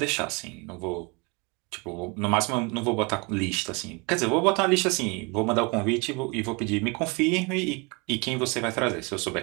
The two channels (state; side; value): quieter; left; 29.6 dB